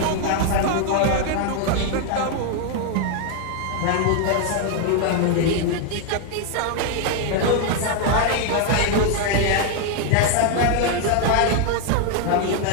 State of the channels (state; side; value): different; both; correlation 0.00